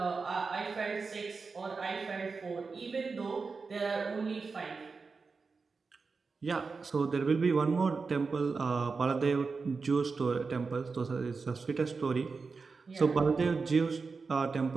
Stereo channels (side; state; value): left; quieter; 4.6 dB